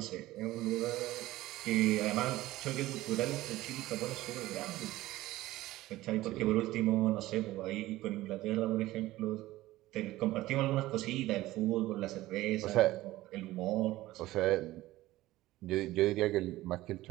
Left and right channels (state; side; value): quieter; left; 16.9 dB